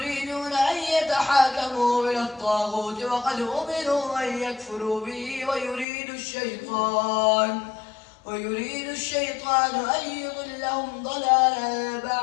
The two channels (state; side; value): drops out; right; at 5.9 s